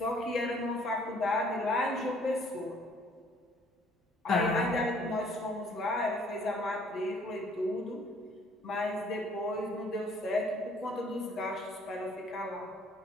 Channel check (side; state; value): both; normal; correlation 0.60